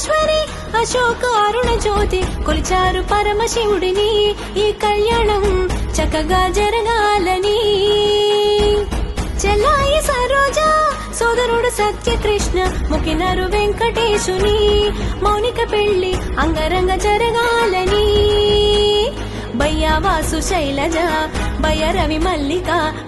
అశోక అరుణ జ్యోతి కొలిచారు పరమశివుడిని ఈ కళ్యాణం చక్కగా జరగాలని చెల్లాయి సరోజ సోదరుడు సత్యకృష్ణ ముకినరు వెంకటేశుని మౌనిక పెళ్లి అంగరంగ జరగాలని బయ్యావాసు శైలజ భయరవి మల్లిక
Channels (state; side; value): identical; both; correlation 1.00